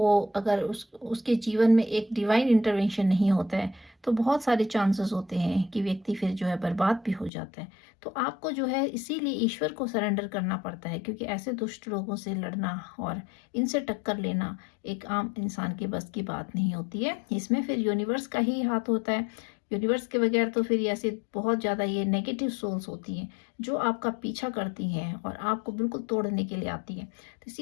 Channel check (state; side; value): drops out; right; at 7.3 s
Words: अगर उसके जीवन में एक डिवाइन इंटरवेंशन नहीं होता है, तो बहुत सारे चांसेस होते हैं कि व्यक्ति फिर जो है बर्बाद भी हो जाता है। तो आपको जो है इसीलिए ईश्वर को सरेंडर करना पड़ता है, क्योंकि ऐसे दुष्ट लोगों से लड़ना और इनसे टक्कर लेना एक आम इंसान के बस की बात नहीं होती है। इसमें फिर यूनिवर्स का ही हाथ होता है। यूनिवर्स के बगैर तो फिर ऐसे बहुत ज़्यादा ये नेगेटिव सोल्स होती हैं, जो आपका पीछा करती हैं और आपको बिल्कुल तोड़ने के लिए आती हैं। तो